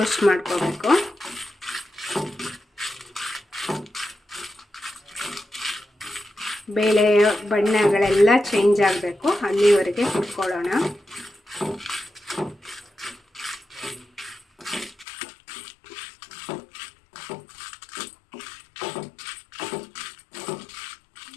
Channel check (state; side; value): drops out; right; at 15.1 s